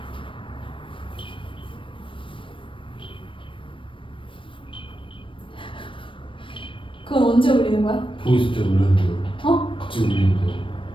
그건 언제 올리는 거야? 보이스 때 울렸는데요. 같이 울리는데요.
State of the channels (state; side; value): late; right; 0.25 ms